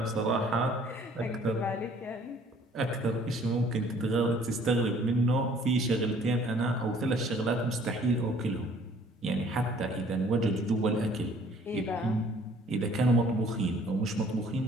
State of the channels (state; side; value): normal; both; correlation 0.56